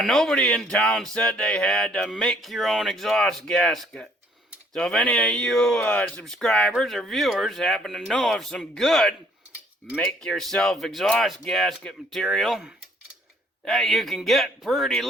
in town said they had to make your own exhaust gasket. So if any of you subscribers or viewers happen to know of some good make-yourself exhaust gasket material that you can get pretty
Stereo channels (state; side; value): normal; both; correlation 0.63